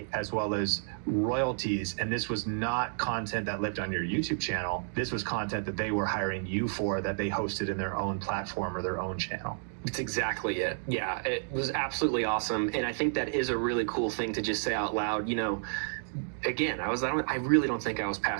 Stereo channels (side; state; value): left; silent; digital silence